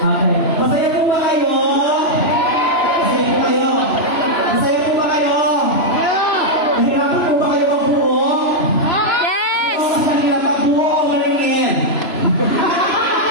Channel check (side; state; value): right; late; 3.0 ms